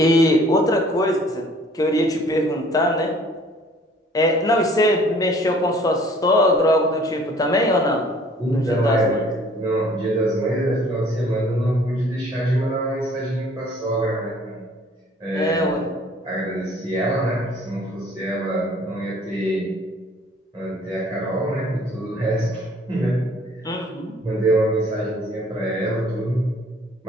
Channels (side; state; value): both; normal; correlation 0.55